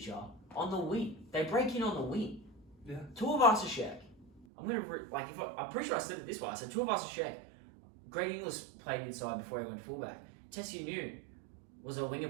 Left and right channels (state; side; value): drops out; left; at 4.5 s